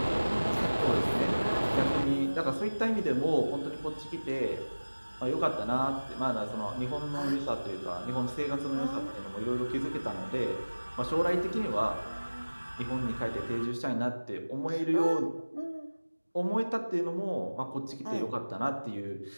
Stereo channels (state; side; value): inverted; both; correlation -1.00